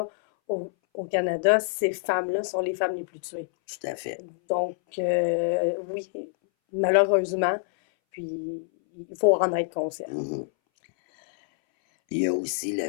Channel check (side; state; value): right; silent; 60 dB below the other